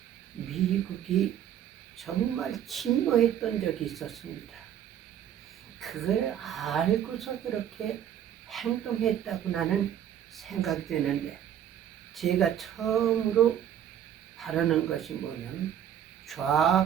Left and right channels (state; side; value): quieter; left; 10.1 dB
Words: 미국이 정말 침노했던 적이 있었습니다. 그걸 알고서 그렇게 행동했다고 나는 생각되는데, 제가 처음으로 바라는 것이 뭐냐면